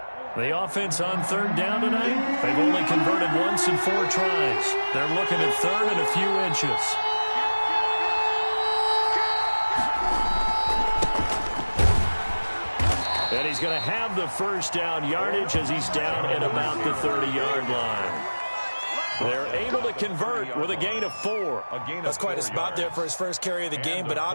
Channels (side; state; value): both; inverted; correlation -1.00